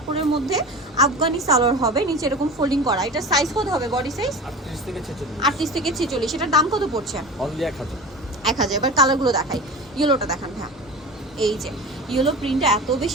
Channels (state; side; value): normal; both; correlation 0.32